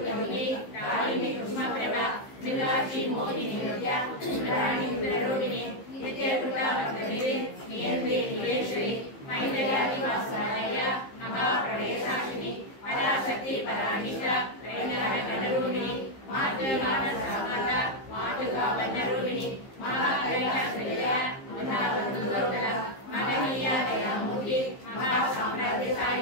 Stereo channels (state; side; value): late; right; 15 ms